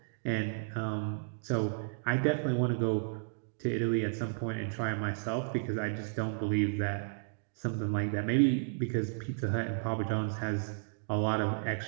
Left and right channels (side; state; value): left; silent; digital silence